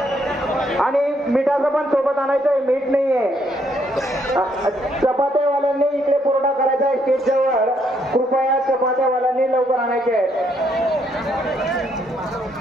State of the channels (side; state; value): both; normal; correlation 0.72